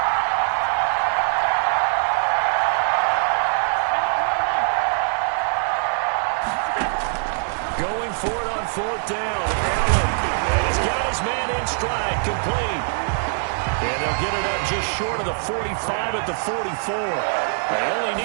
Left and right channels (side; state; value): left; silent; 59 dB below the other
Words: Going for it on 4th down. Allen. And he's got his man in stride, complete. And they'll get it up just short of the 45 at the 44. They only